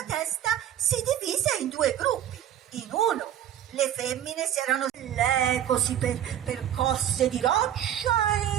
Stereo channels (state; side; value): quieter; left; 10.8 dB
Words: testa si divise in due gruppi. In uno le femmine si erano così percosse di roccia